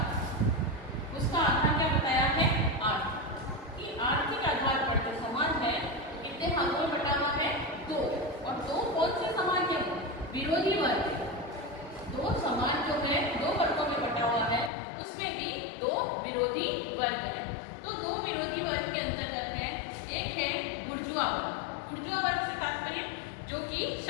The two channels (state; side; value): drops out; right; at 14.7 s